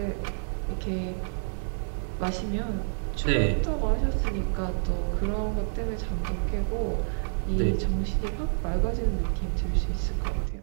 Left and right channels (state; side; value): silent; left; digital silence